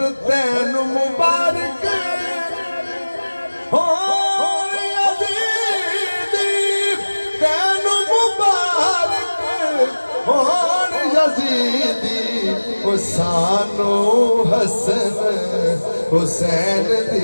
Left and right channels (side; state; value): both; inverted; correlation -1.00